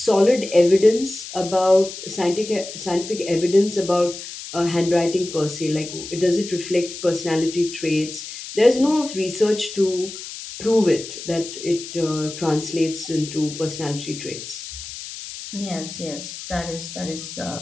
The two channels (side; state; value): left; noise; hiss, 11 dB below the sound